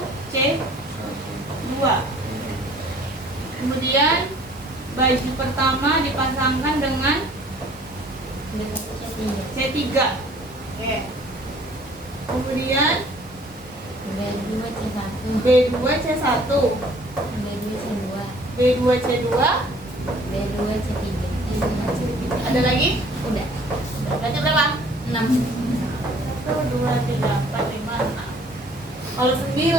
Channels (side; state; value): both; normal; correlation 0.54